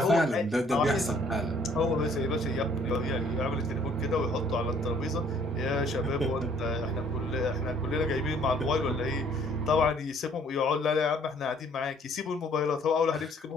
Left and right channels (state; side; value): normal; both; correlation 0.60